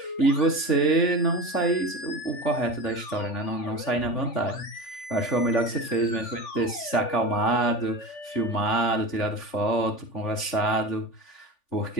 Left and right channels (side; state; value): right; late; 3.5 ms